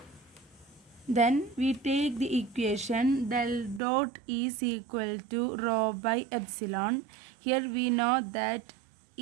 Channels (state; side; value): drops out; left; at 3.8 s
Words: Then we take the equation del dot E is equal to rho by epsilon. Here we know that